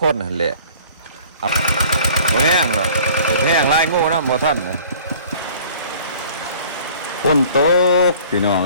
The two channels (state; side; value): inverted; both; correlation -0.50